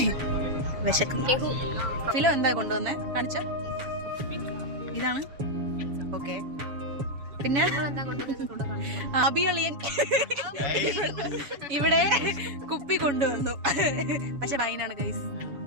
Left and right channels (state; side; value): late; left; 7.1 ms